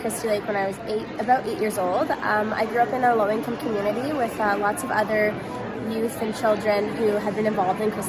Christie Lake when I was about 8 years old. I grew up in a low-income community with lots of other youth and children who had been involved in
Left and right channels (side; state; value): both; identical; correlation 1.00